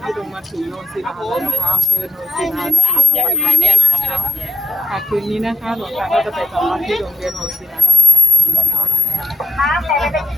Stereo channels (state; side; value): normal; both; correlation 0.84